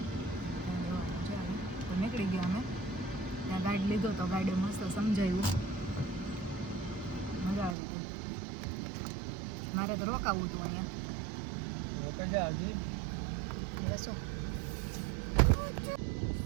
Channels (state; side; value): drops out; left; at 7.8 s